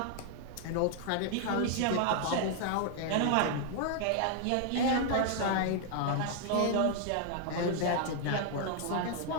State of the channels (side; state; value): both; different; correlation 0.00